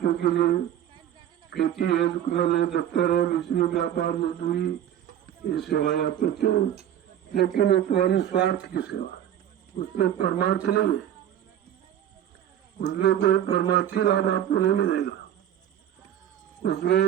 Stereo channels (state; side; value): quieter; left; 10.7 dB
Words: के लिए, खेती है, दुकान है, दफ्तर है, बिजली, व्यापार, मजदूरी, ये सेवाएं आप करते हो। लेकिन वो तुम्हारी स्वार्थ की सेवा, उसमें परमार्थ नहीं है, उसमें कोई परमार्थी लाभ आपको नहीं मिलेगा,